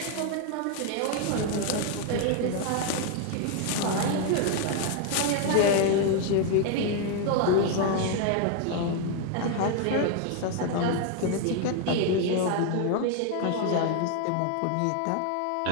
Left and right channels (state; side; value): different; both; correlation 0.01